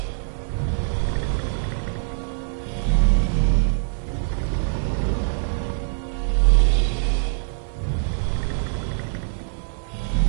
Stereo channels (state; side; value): silent; left; digital silence